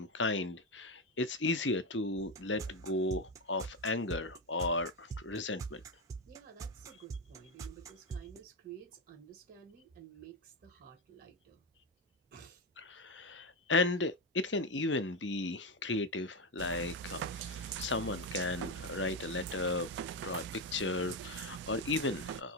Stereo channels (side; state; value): both; normal; correlation 0.11